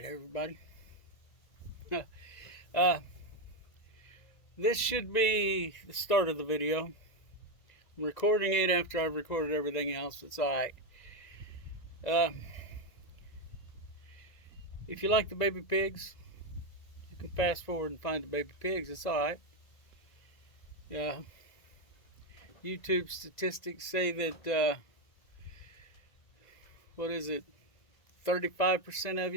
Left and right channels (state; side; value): late; right; 1.9 ms